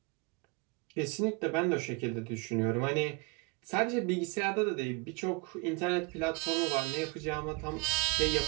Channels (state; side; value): quieter; left; 28.3 dB